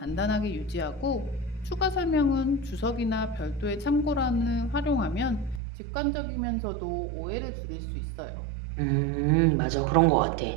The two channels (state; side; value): drops out; left; at 5.6 s